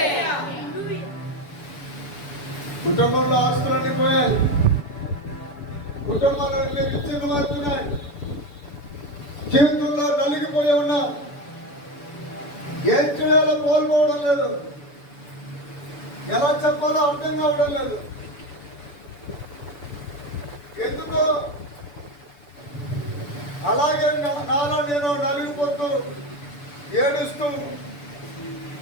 కుటుంబంలో ఆస్తులన్నీ పోయాయి, కుటుంబాలు విచ్ఛిన్నం అవుతున్నాయి, జీవితంలో నలిగిపోయి ఉన్నా, ఏం చేయాలో కోల్పోవడం లేదు, ఎలా చెప్పాలో అర్థం కావడం లేదు. ఎందుకో అలాగే నాలో నేను నలిగిపోతూ ఏడుస్తూ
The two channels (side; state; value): right; late; 6.9 ms